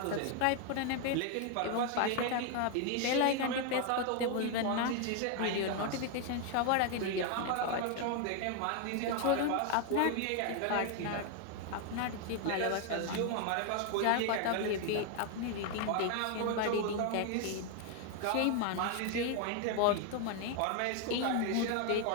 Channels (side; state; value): both; different; correlation 0.01